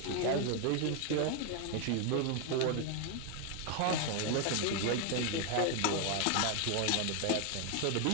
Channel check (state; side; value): different; both; correlation 0.01